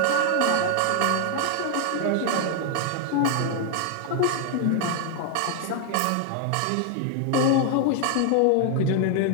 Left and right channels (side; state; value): both; different; correlation 0.00